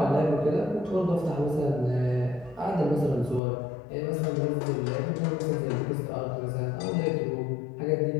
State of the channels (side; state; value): right; drops out; at 3.4 s